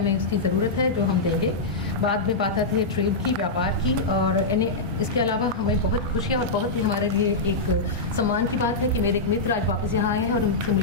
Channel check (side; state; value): right; quieter; 3.3 dB